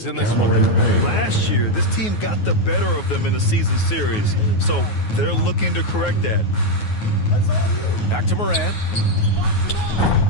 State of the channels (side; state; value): right; late; 9.4 ms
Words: in this one. Last year, this team got the better of them in the season series, so they're looking to correct that. Back to Morant.